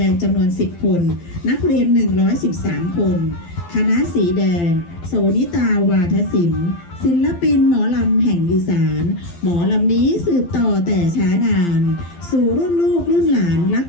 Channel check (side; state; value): right; late; 12 ms